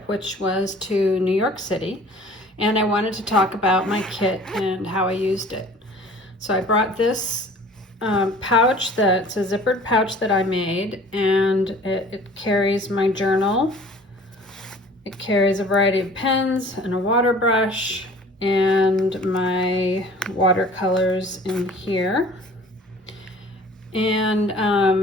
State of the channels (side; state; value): both; normal; correlation 0.48